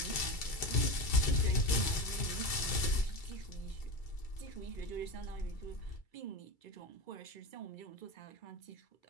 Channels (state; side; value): late; right; 2.3 ms